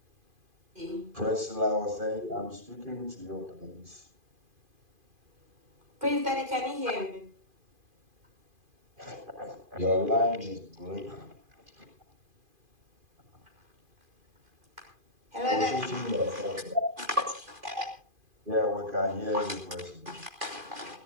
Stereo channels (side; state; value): left; late; 2.5 ms